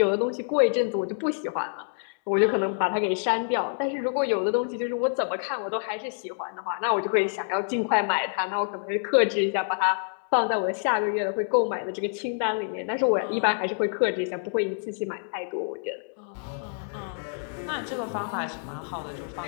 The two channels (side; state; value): right; silent; digital silence